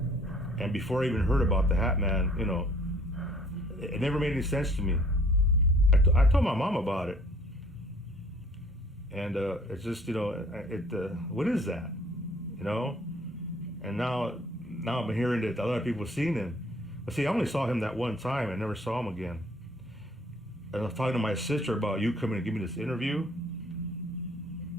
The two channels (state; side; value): normal; both; correlation 0.57